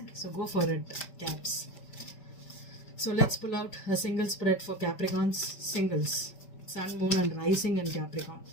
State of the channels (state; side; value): late; right; 5.2 ms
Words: so go for it, Caps. So let's pull out a single spread for Capricorns. Singles, Sun, Moon and Rising in Capricorn.